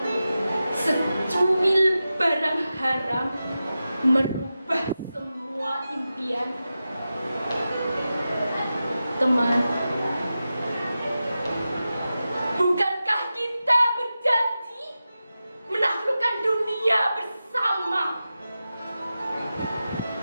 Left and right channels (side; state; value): both; inverted; correlation -0.93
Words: secuil barang haram merubah semua impian. Teman, bukankah kita berjanji menaklukkan dunia bersama?